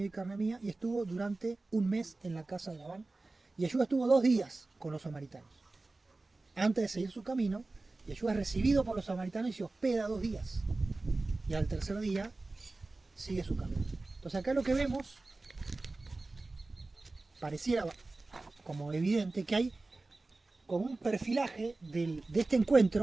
y carne mía, y estuvo durante un mes en la casa de Labán. Y Yeshua estuvo 2 días con los samaritanos. Antes de seguir su camino, Yeshua es recibido por los samaritanos y se hospeda 2 días. Y al tercer día sigue su camino. Entonces acá lo que vemos, pareciera como evidente que hay como un perfilaje de este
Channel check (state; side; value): quieter; left; 3.3 dB